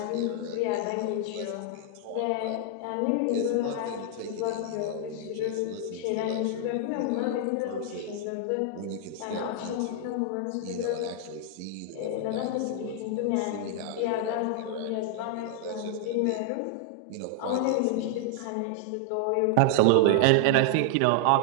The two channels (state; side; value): different; both; correlation -0.01